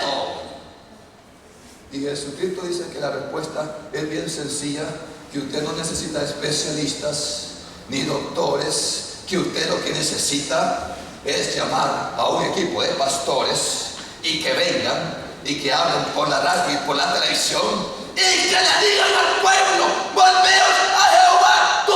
Y Jesucristo dice que la respuesta es bien sencilla, que usted no necesita especialistas ni doctores, que usted lo que necesita es llamar a un equipo de pastores y que vengan y que hablen por la radio y por la televisión y que le digan al pueblo: volveos a Jehová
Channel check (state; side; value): identical; both; correlation 1.00